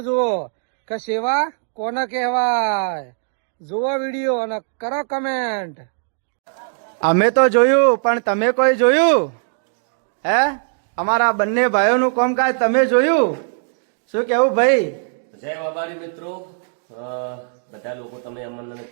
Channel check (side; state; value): left; silent; digital silence